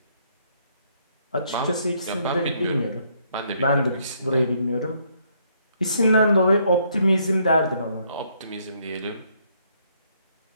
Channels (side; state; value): both; inverted; correlation -0.70